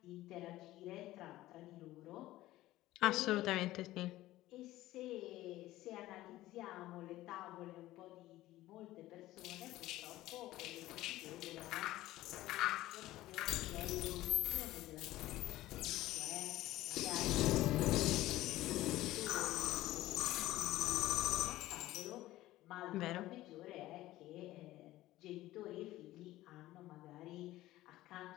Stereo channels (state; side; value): quieter; right; 16.1 dB